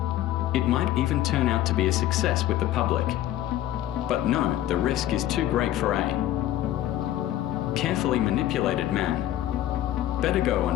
It might even turn out to be a success with the public. But no, the risk is too great for a carefully manipulated man. Better go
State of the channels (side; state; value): right; quieter; 13.2 dB